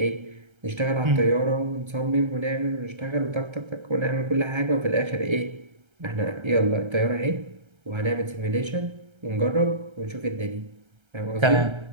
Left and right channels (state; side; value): late; left; 1.3 ms